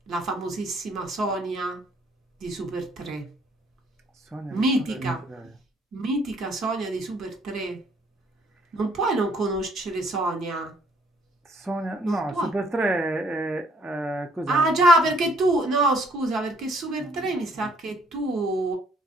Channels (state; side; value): normal; both; correlation 0.63